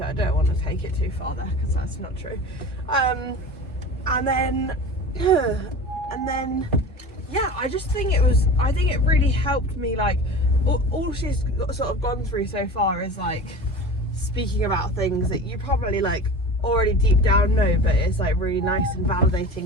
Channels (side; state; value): both; normal; correlation 0.35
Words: I don't want to take it too far there, because that's not true. And then yeah, I just think I think it really helped me, like, all she's sort of gone through so far is like speaking about things that you probably like already deep down know, but it's like really nice and